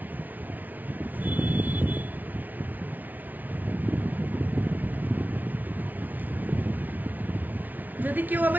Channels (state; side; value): late; left; 0.080 ms